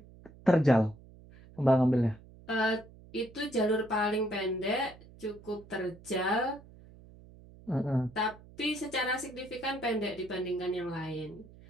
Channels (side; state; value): right; noise; hum, 21 dB below the sound